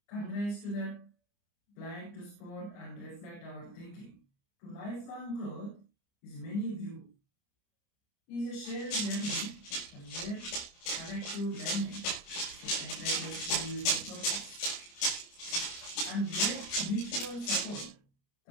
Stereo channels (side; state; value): right; late; 29 ms